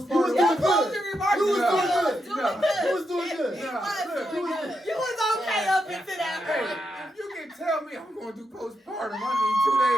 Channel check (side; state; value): both; normal; correlation 0.84